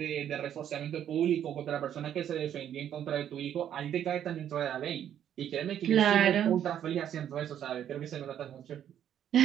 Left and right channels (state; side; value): quieter; left; 10.1 dB